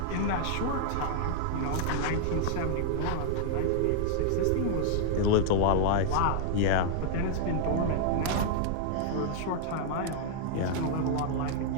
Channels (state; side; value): different; both; correlation -0.01